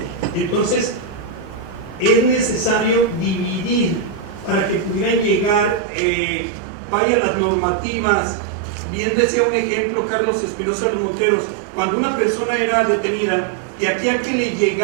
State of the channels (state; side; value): drops out; left; at 5.8 s